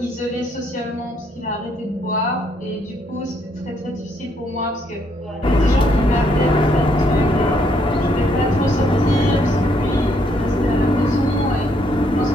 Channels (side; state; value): both; normal; correlation 0.71